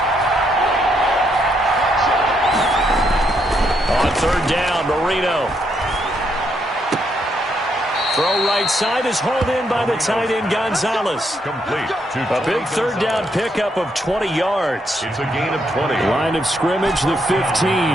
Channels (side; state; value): both; normal; correlation 0.76